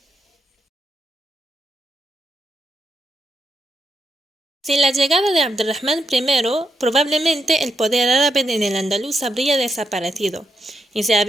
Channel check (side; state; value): both; normal; correlation 0.83